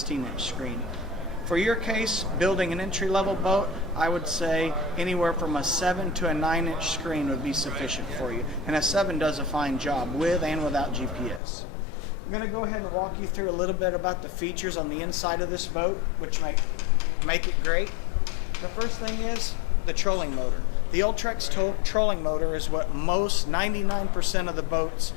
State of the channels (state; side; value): drops out; right; at 11.4 s